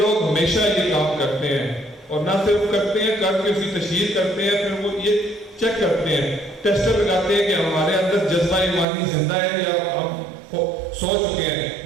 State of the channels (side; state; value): left; drops out; at 8.8 s